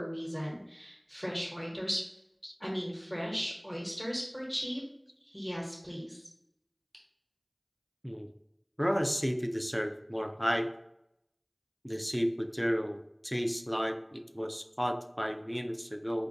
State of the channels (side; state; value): both; identical; correlation 1.00